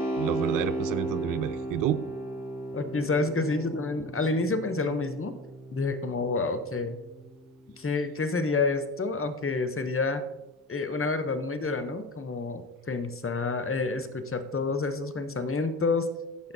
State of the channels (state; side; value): normal; both; correlation 0.33